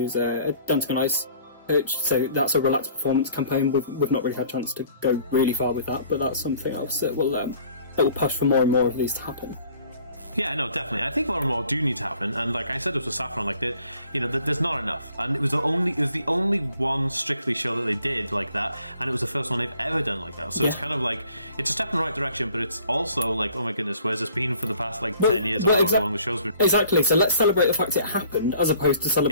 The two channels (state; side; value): inverted; both; correlation -0.55